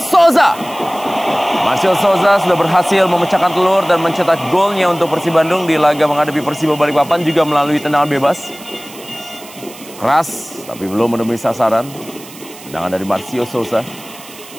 Marcio Souza sudah berhasil memecahkan telur dan mencetak golnya untuk Persib Bandung di laga menghadapi Persiba Balikpapan juga melalui tendangan bebas. Keras tapi belum menemui sasaran. Tendangan dari Marcio Souza.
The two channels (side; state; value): right; noise; hiss, 18 dB below the sound